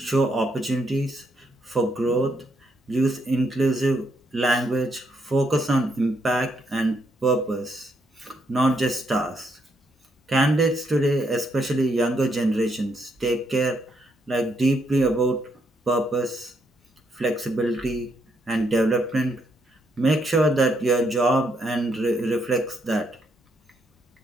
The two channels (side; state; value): both; normal; correlation 0.76